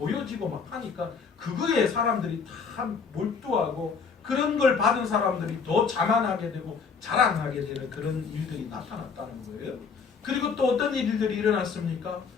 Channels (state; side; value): quieter; right; 5.5 dB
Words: 막 하니까 그거에 사람들이 다 몰두하고 그런 걸 받은 사람들이 더 자만하게 되고 자랑하게 되는 그런 일들이 나타났다는 거예요. 그리고 또 어떤 일들이 일어났습니까?